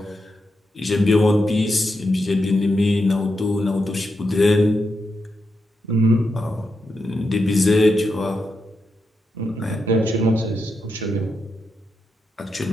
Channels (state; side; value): normal; both; correlation 0.85